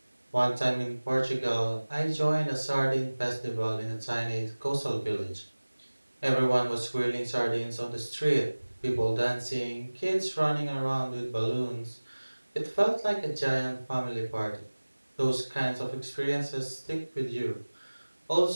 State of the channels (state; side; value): inverted; both; correlation -1.00